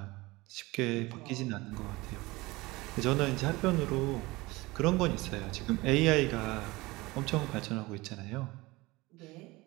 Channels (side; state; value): left; quieter; 21.6 dB